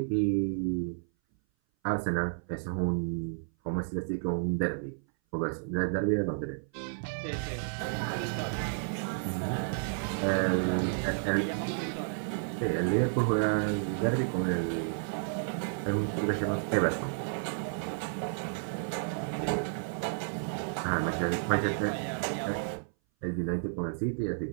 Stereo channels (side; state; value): left; silent; 57 dB below the other